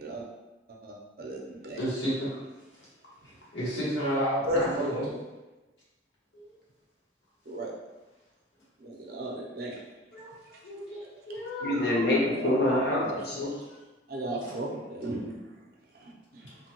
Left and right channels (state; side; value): normal; both; correlation 0.37